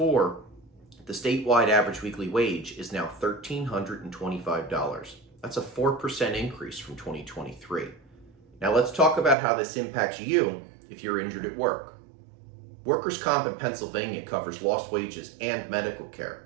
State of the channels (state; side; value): drops out; left; at 9.3 s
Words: the statewide average weekly wage is now $1,325. That's a 4% increase from 2023. Now let's talk about how this impacts you if you're injured at work. Workers' comp in Pennsylvania covers lost wages and medical